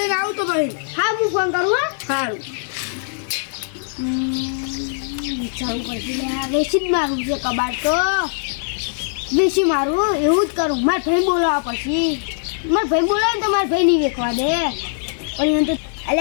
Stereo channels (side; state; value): right; silent; 55 dB below the other